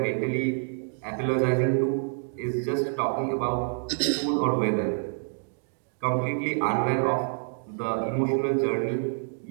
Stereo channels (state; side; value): silent; left; digital silence